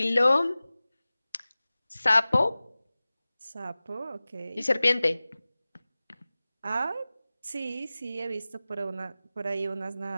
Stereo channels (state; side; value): inverted; both; correlation -0.97